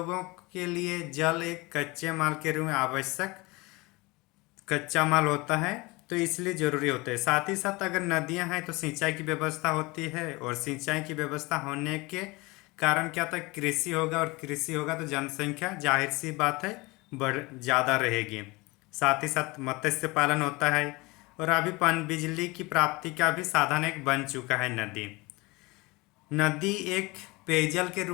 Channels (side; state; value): right; quieter; 23.9 dB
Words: के लिए जल एक कच्चे माल के रूप में आवश्यक कच्चा माल होता है, तो इसलिए ज़रूरी होता है। साथ ही साथ अगर नदियाँ हैं तो सिंचाई की व्यवस्था होती है और सिंचाई की व्यवस्था होने के कारण क्या होता है, कृषि होगा और कृषि होगा तो जनसंख्या जाहिर सी बात है बढ़ ज़्यादा रहेगी। साथ ही साथ मत्स्य पालन होता है और अभी पन बिजली की प्राप्ति का भी साधन एक बन चुका है नदी। नदी एक पेयजल के